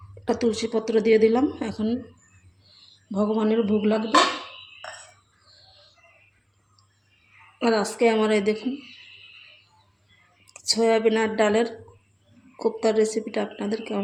একটা তুলসী পত্র দিয়ে দিলাম, এখন ভগবানের ভোগ লাগবে। আর আজকে আমার এই দেখুন সয়াবিন আর ডালের কোপ্তার রেসিপিটা আপনাদের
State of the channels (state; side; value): identical; both; correlation 1.00